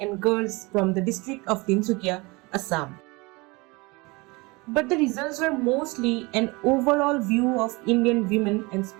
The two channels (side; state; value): left; quieter; 25.2 dB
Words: girls from the district of Tinsukia, Assam. But the results were mostly an overall view of Indian women and